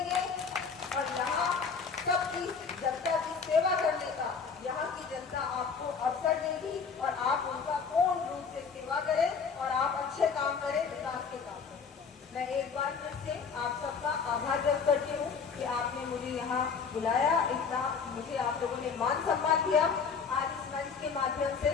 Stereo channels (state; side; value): quieter; right; 5.7 dB